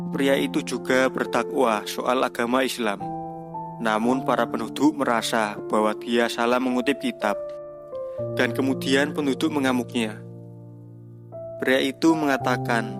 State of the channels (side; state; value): both; identical; correlation 1.00